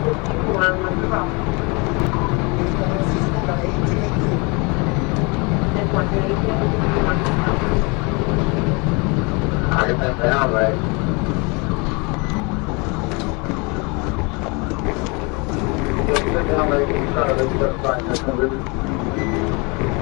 I get that down, right? Sit down, right? You try to lift it up, fine, that's good.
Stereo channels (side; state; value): right; quieter; 29.6 dB